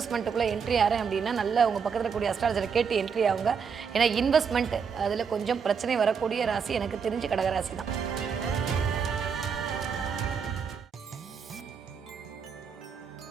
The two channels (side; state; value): left; quieter; 6.3 dB